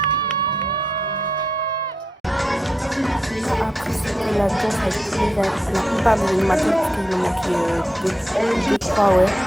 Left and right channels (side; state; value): both; normal; correlation 0.83